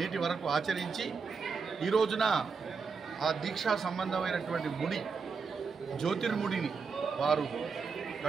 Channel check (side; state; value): left; quieter; 5.3 dB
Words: వరకు ఆచరించి ఈ రోజున ఆ దీక్షా సంబంధమైనటువంటి ముడి, జ్యోతిర్ముడిని వారు